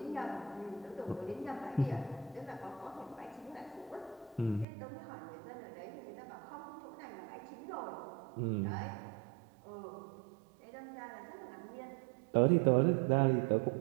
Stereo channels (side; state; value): left; drops out; at 4.7 s